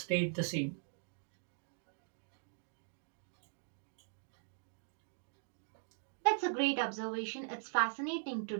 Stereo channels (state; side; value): silent; left; digital silence